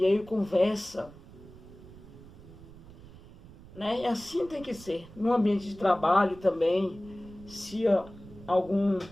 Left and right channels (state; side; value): noise; right; rumble, 19 dB below the sound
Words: aí conversa, né? E assim tem que ser. No ambiente de trabalho também, se algum